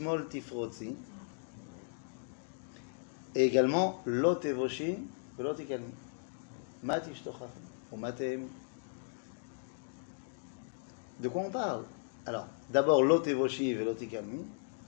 Tifrotzi, et également Lot Evoshi, Lot Ikalmi, Mat Ishtochach, ou Matem. De quoi on parle? Alors, d'abord Lot Evoshi et Lot Ikalmi.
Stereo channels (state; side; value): silent; right; digital silence